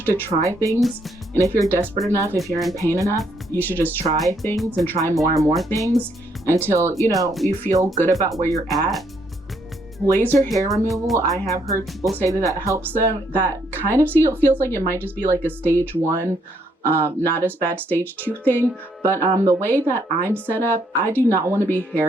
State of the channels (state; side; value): normal; both; correlation 0.72